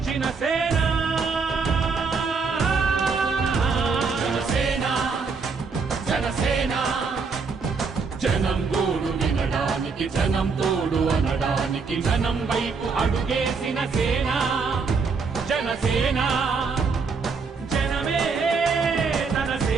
సేన జనసేన జనసేన జనం గోడు వినడానికి జనం తోడు అనడానికి జనం వైపు అడుగేసిన సేన జనసేన జనమే తన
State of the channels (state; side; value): quieter; left; 4.9 dB